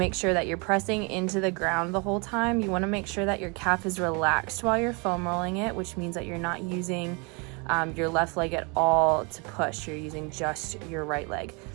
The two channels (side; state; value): left; quieter; 31.3 dB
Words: sure that you're pressing into the ground the whole time, you want to make sure that your calf is relaxed while you're foam rolling it, which means that you're not using your left leg at all to push. You're using just your right leg.